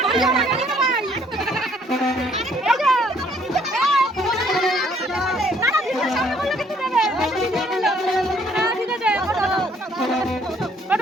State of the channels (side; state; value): both; normal; correlation 0.64